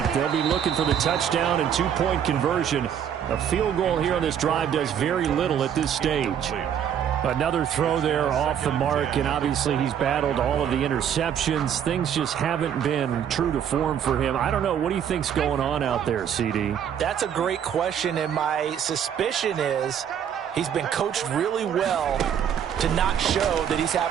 8. They'll be looking for the touchdown and two-point conversion. A field goal here on this drive does very little at this stage. Another throw there off the mark, and obviously he's battled all of the interceptions. Things just haven't been true to form for him. I don't know. What do you think's going on out there, CD? That's a great question, and my suspicion is he's been coached really well to not show that he's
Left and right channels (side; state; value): left; quieter; 8.9 dB